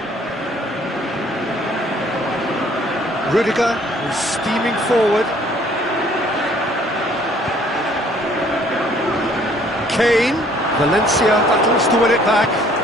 Rudiger is steaming forward. Kane, Valencia battles to win it back.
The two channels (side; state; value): both; normal; correlation 0.59